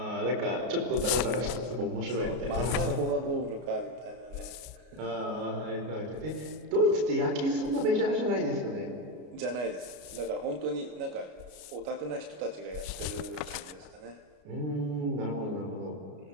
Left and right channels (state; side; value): late; left; 33 ms